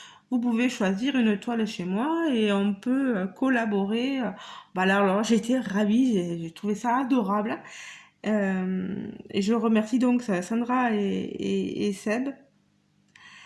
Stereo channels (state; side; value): identical; both; correlation 1.00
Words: vous pouvez choisir une toile chez moi et on peut collaborer. Bah alors j'étais ravie, j'ai trouvé ça adorable. Et je remercie donc Sandra et Seb.